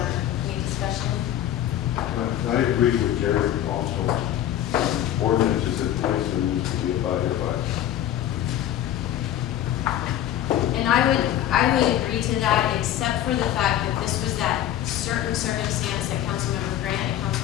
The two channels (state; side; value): quieter; right; 11.8 dB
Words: any discussion? I agree with Jerry also. Ordinances in place that needs to be abided by. And I would agree to that, except for the fact that this was that certain circumstance that Councilmember Grant and